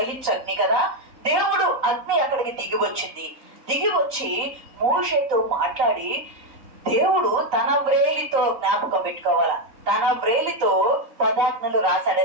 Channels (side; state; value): left; late; 3.9 ms